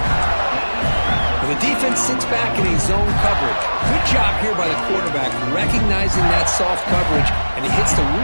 The defense sits back in a zone coverage. Good job here by the quarterback, recognizing that soft coverage, and he hits the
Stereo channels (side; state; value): both; inverted; correlation -1.00